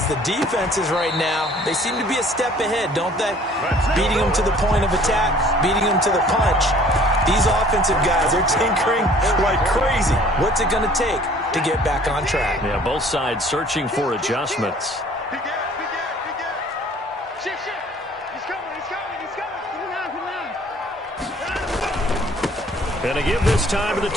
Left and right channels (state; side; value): normal; both; correlation 0.54